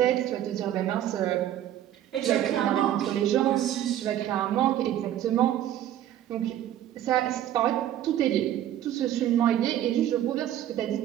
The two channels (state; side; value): quieter; left; 11.8 dB